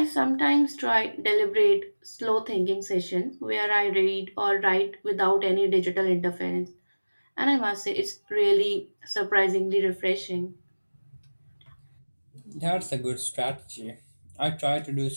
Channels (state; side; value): inverted; both; correlation -1.00